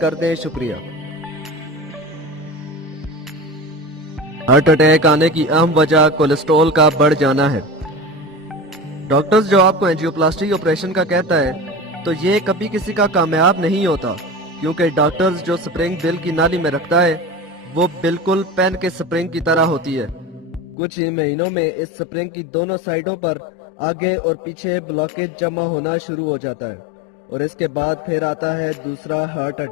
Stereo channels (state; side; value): drops out; right; at 20.8 s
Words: दें। शुक्रिया। हार्ट अटैक आने की अहम वजह कोलेस्ट्रॉल का बढ़ जाना है। डॉक्टर्स जो आपको एंजियोप्लास्टी ऑपरेशन का कहता है तो ये कभी किसी का कामयाब नहीं होता, क्योंकि डॉक्टर्स जो स्प्रिंग दिल की नाली में रखता है वो बिल्कुल पेन के स्प्रिंग की तरह होती है। कुछ ही महीनों में इस स्प्रिंग की दोनों साइडों पर आगे और पीछे ब्लॉकेज जमा होना शुरू हो जाता है, और इसके बाद फिर आता है दूसरा हार्ट